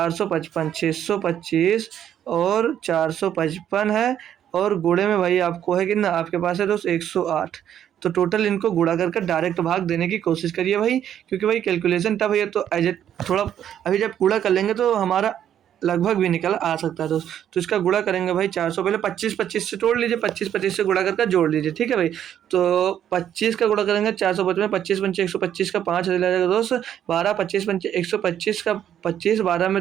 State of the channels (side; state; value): left; quieter; 10.1 dB